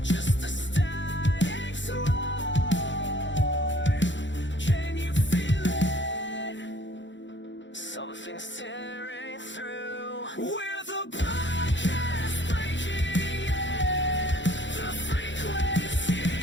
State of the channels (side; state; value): right; late; 0.54 ms